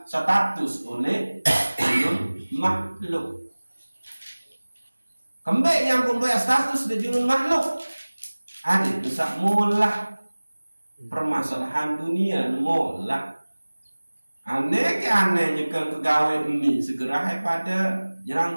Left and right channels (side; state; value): both; inverted; correlation -1.00